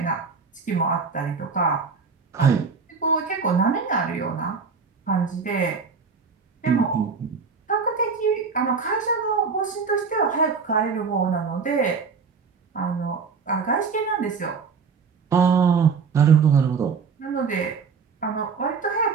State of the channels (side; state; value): left; quieter; 5.3 dB